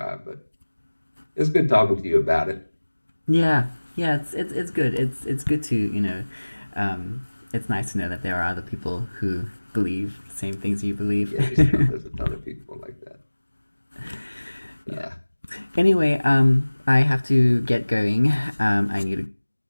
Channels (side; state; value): both; inverted; correlation -1.00